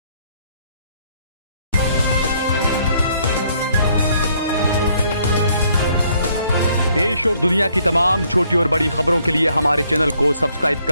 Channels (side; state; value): both; inverted; correlation -0.67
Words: देश और दुनिया की तमाम छोटी और बड़ी खबरों के लिए हमारे चैनल को सब्सक्राइब